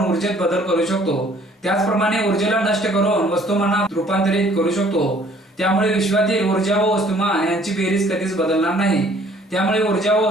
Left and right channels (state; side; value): normal; both; correlation 0.58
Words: ऊर्जेत बदल करू शकतो, त्याचप्रमाणे ऊर्जेला नष्ट करून वस्तुमानात रूपांतरित करू शकतो. त्यामुळे विश्वातील ऊर्जा व वस्तुमान यांची बेरीज कधीच बदलणार नाही. त्यामुळे ऊर्जा व